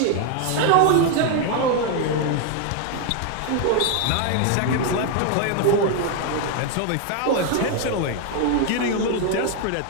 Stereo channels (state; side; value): different; both; correlation 0.01